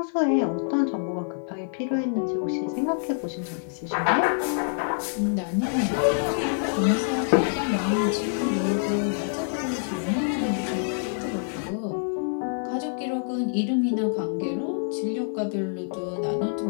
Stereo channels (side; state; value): right; silent; 61 dB below the other